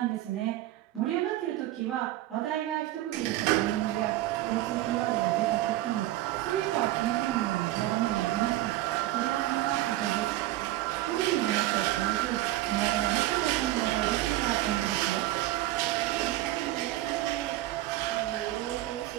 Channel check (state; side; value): quieter; left; 15.8 dB